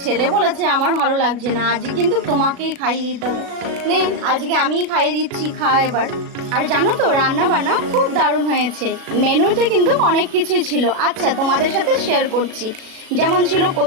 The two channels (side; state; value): left; late; 36 ms